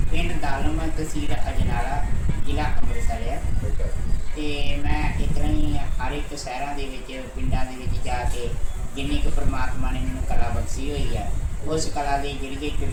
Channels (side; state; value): both; identical; correlation 1.00